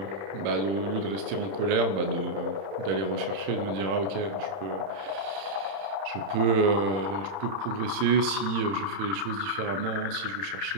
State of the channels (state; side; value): late; left; 31 ms